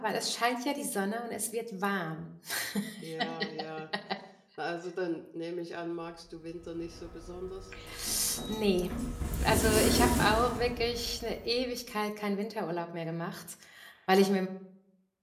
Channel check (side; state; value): both; identical; correlation 1.00